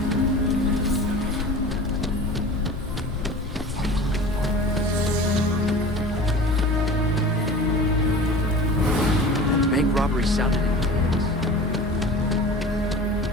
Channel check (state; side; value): normal; both; correlation 0.38